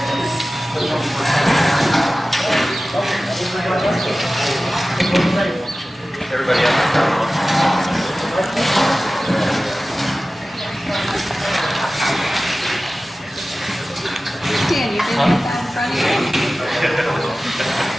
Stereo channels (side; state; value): both; normal; correlation 0.96